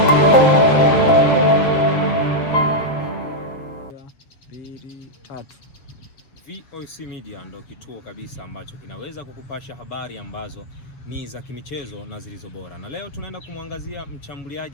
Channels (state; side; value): late; right; 7.2 ms